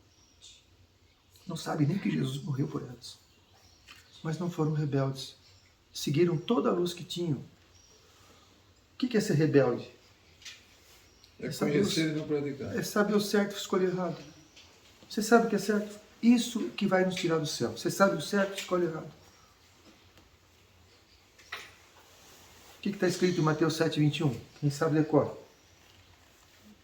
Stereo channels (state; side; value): identical; both; correlation 1.00